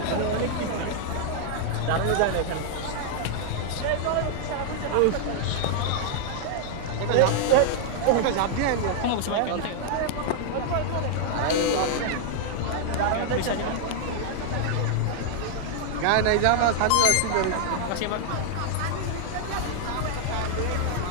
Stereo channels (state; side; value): different; both; correlation 0.00